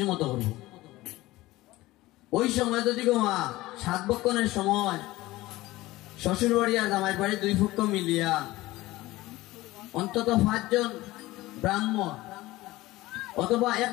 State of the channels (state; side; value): quieter; right; 18.3 dB